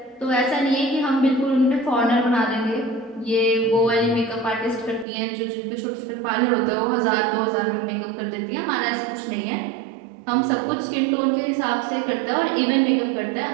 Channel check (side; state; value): left; drops out; at 5.1 s